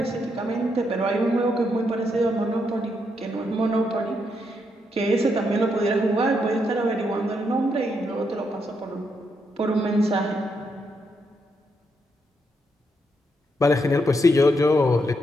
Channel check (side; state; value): both; normal; correlation 0.79